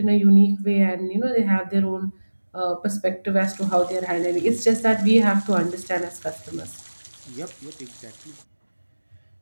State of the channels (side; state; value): both; inverted; correlation -1.00